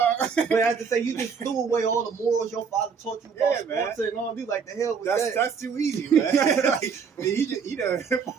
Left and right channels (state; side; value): quieter; left; 6.1 dB